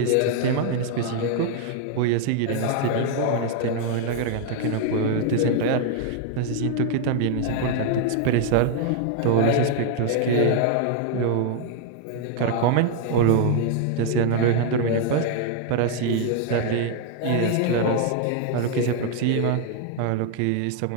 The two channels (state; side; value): different; both; correlation 0.00